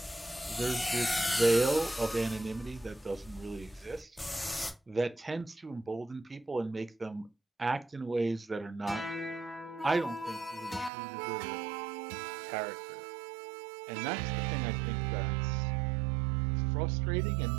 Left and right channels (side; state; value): left; drops out; at 10.9 s